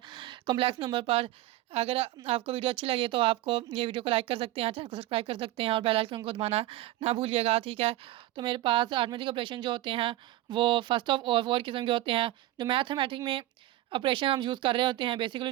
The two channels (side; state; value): left; quieter; 15.8 dB